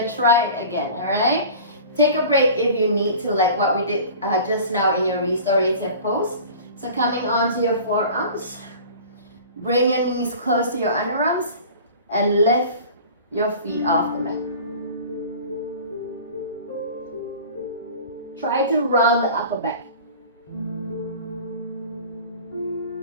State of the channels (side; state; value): both; inverted; correlation -0.41